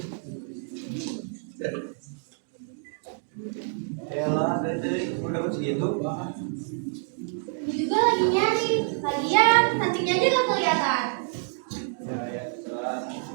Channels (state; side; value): silent; left; 60 dB below the other